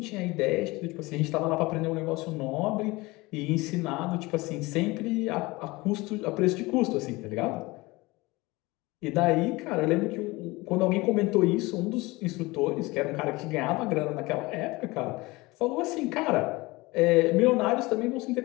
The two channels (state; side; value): quieter; right; 22.3 dB